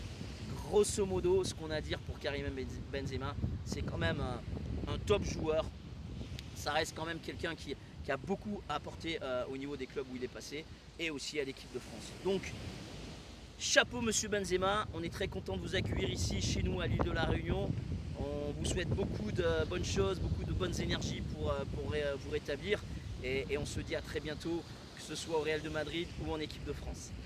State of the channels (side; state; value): both; identical; correlation 1.00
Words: grosso modo, ce qu'on a à dire pour Karim Benzema, c'est quand même un top joueur. Ça reste quand même quelqu'un qui a beaucoup apporté au niveau des clubs où il est passé, et aussi à l'équipe de France. Donc, chapeau monsieur Benzema, on est très content de vous accueillir ici chez nous à l'île de la Réunion. On vous souhaite beaucoup de bonnes choses, beaucoup de bonnes énergies pour vous rétablir, et on se dit à très bientôt, que ce soit au Real de Madrid ou en équipe de France.